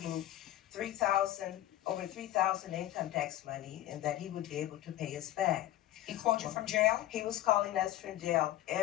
over 3,000 income tax money, and that he would be able to pay us back. He called you from jail? He was calling us from jail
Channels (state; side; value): quieter; right; 14.1 dB